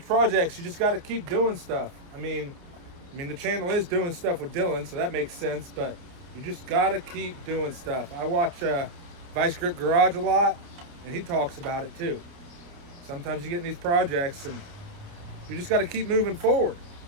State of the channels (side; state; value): left; late; 29 ms